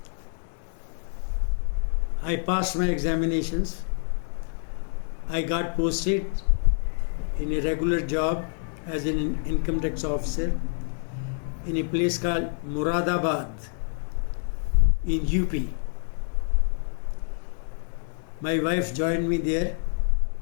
I passed my examinations. I got posted in a regular job as an income tax officer in a place called Muradabad in UP. My wife joined me there.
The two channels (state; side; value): silent; right; digital silence